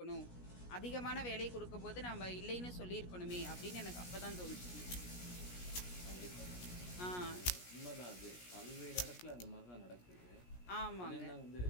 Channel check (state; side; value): late; right; 17 ms